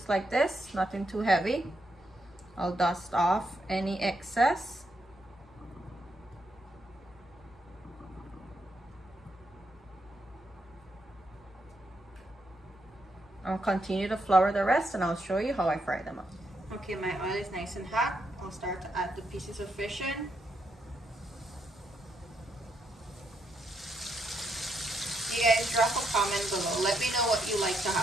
like this, nothing too heavy. I'll dust off any excess. I'll continue to flour the rest and I'll show you how I fry them up. Okay, my oil is nice and hot. I'll start to add the pieces of fish in. You guys drop a comment below. Let me know what you like to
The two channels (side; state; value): both; normal; correlation 0.79